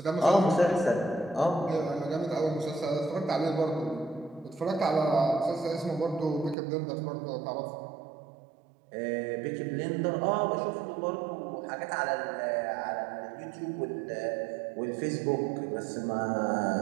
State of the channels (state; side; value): drops out; left; at 6.6 s